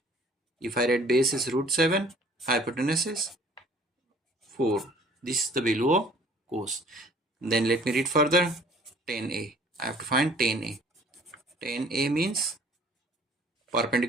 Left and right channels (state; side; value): normal; both; correlation 0.54